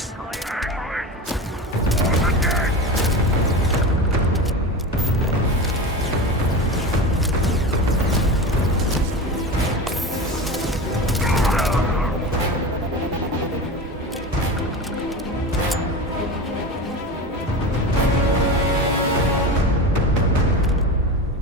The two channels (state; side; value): normal; both; correlation 0.27